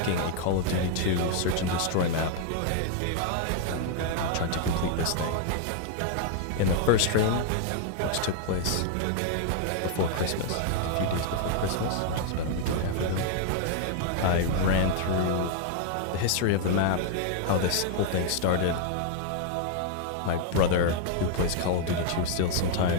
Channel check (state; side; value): different; both; correlation 0.00